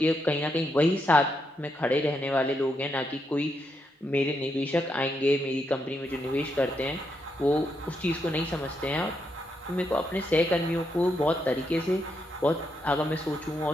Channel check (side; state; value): both; normal; correlation 0.81